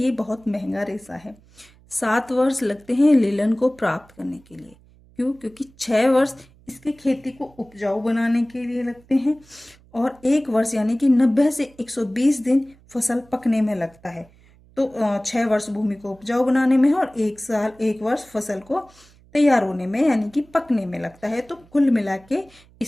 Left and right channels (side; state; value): right; noise; hum, 28 dB below the sound